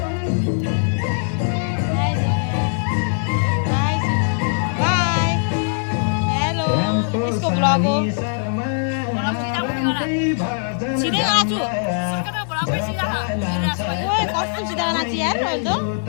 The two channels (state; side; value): silent; right; digital silence